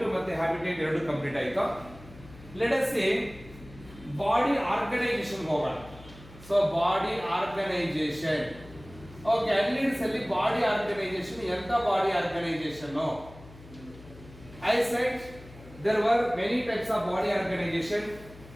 ಮತ್ತೆ ಹ್ಯಾಬಿಟೇಟ್ ಎರಡು ಕಂಪ್ಲೀಟ್ ಆಯ್ತು. Let us see body organisation ಹೋಗೋಣ. So body organisation. Okay, annelids ಅಲ್ಲಿ ಬಾಡಿ ಆರ್ಗನೈಸೇಷನ್, ಎಂತ body organisation? I said there were many types of body organisation.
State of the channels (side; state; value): left; noise; hum, 19 dB below the sound